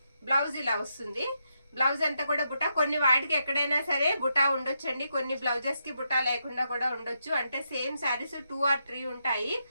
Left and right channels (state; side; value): inverted; both; correlation -0.82